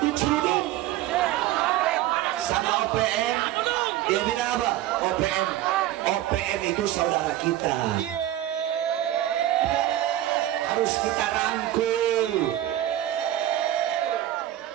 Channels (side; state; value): left; quieter; 13.6 dB